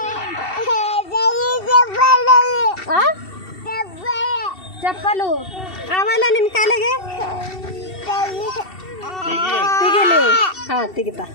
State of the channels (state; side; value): late; right; 2.7 ms